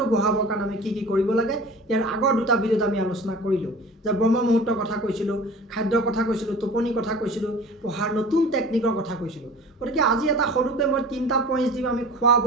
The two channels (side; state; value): both; normal; correlation 0.41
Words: বঢ়াবৰ কাৰণে আমি কি কৰিব লাগে। ইয়াৰ আগৰ দুটা ভিডিঅ'ত আমি আলোচনা কৰিলোঁ যে ব্ৰহ্ম মুহূৰ্তৰ কথা কৈছিলোঁ, খাদ্যৰ কথা কৈছিলোঁ, টোপনিৰ কথা কৈছিলোঁ, পঢ়াৰ নতুন টেকনিকৰ কথা কৈছিলোঁ। গতিকে আজি এটা সৰুকৈ মই 3টা পইণ্টছ দিম আমি খোৱা